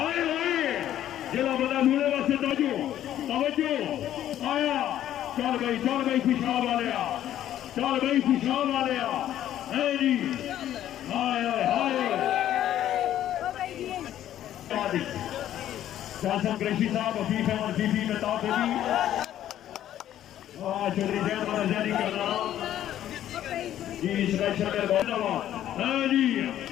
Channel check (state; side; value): quieter; right; 11.8 dB